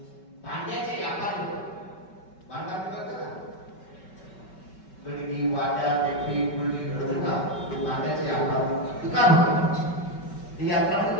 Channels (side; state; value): right; late; 5.3 ms